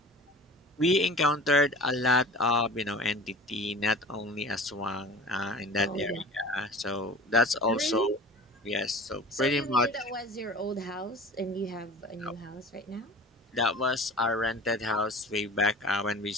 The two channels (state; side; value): normal; both; correlation 0.40